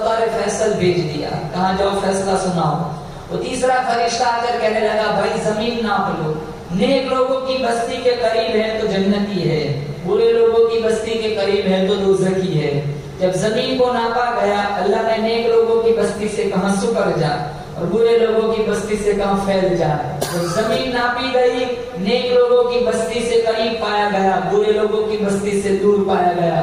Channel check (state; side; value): identical; both; correlation 1.00